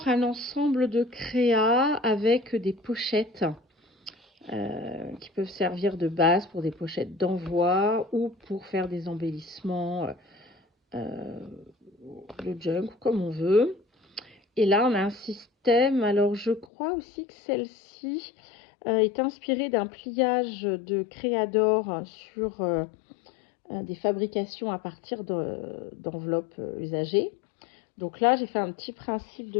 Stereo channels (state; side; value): drops out; right; at 16.7 s